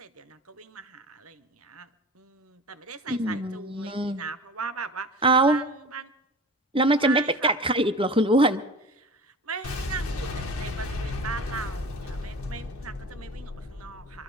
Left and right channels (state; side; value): normal; both; correlation 0.36